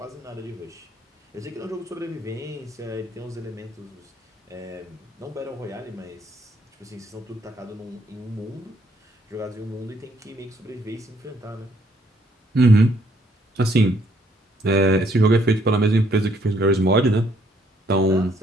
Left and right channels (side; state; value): both; normal; correlation 0.68